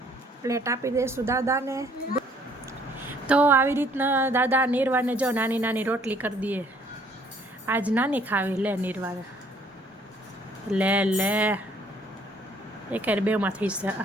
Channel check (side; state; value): both; normal; correlation 0.61